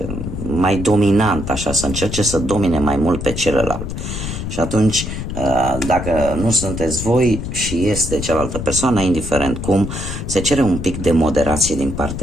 mai dominantă, așa, să încerce să domine mai mult pe celălalt. Și atunci, dacă nu sunteți voi și este cealaltă persoană, indiferent cum, se cere un pic de moderație din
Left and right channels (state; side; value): noise; left; rumble, 6 dB below the sound